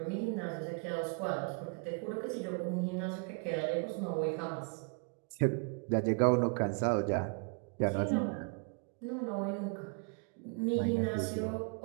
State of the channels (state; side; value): quieter; left; 38.1 dB